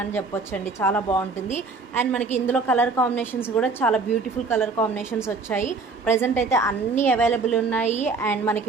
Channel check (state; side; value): quieter; left; 4.1 dB